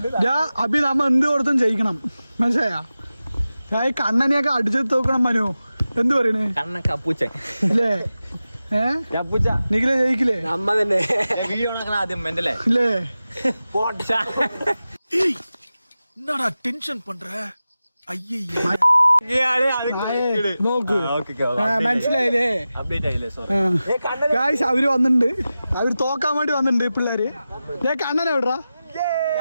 അഭി നമ്മ എന്ത് കൊടുത്തും ജയിക്കണം, മനസ്സിലായാ? കണ്ണനെയൊക്കെ അടിച്ചെടുത്ത് നോക്കണം. മനു എന്ത് പറയണേ? കണ്ണൂച്ചൻ അല്ലേ? നിഖിലെ ജയിക്കില്ലേ? നമ്മ തന്നെ ആദ്യം അല്ലേ? என்னடா டென்ஷன் பண்ற? നോക്ക്, മനസ്സിലായില്ലേ? ഗായ്സ് അവര് വന്നിട്ടുണ്ട്, അവര് തോക്കാൻ വേണ്ടി വന്നിട്ടുണ്ട് പിള്ളേര്. കണ്ണനെ എവിടാ?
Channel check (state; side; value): inverted; both; correlation -0.94